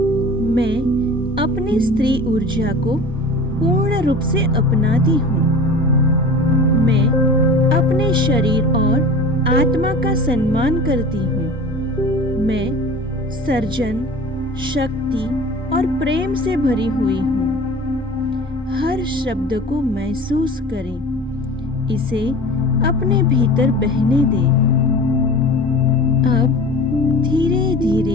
मैं अपनी स्त्री ऊर्जा को पूर्ण रूप से अपनाती हूँ। मैं अपने अपने शरीर और आत्मा का सम्मान करती हूँ। मैं सर्जन, शक्ति और प्रेम से भरी हुई हूँ। हर शब्द को महसूस करें, इसे अपने भीतर बहने दें। अब धीरे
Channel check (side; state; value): both; normal; correlation 0.39